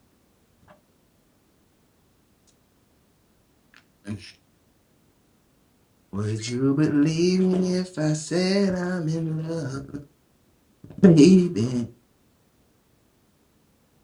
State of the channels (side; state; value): both; identical; correlation 1.00